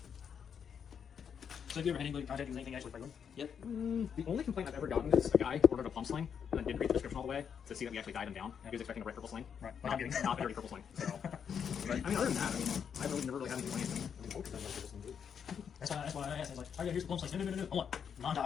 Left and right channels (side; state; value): right; quieter; 7.5 dB